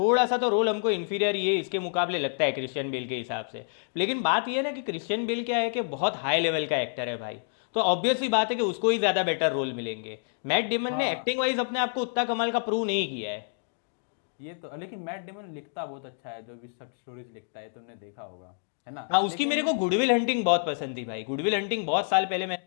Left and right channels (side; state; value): right; silent; digital silence